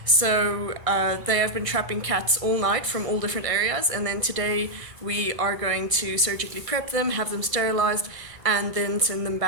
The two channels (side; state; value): left; late; 1.6 ms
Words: So they have been trapping cats all night from all different areas, and then today we are going to surgically prep them, have them sterilized, and then send them